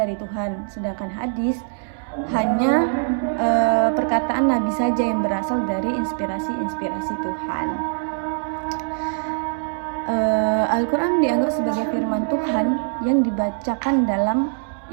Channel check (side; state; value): left; silent; digital silence